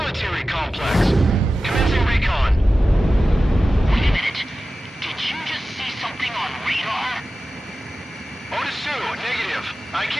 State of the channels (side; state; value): both; normal; correlation 0.94